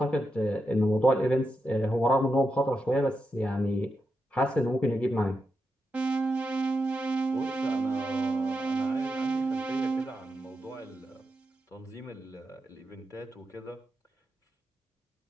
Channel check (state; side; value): normal; both; correlation 0.86